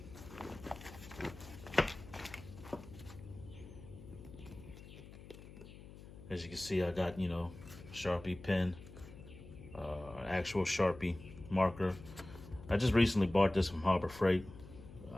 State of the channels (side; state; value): left; noise; hum, 16 dB below the sound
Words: As you can see, I got, you know, Sharpie pen, actual Sharpie marker. I just recently bought this from Harbor Freight.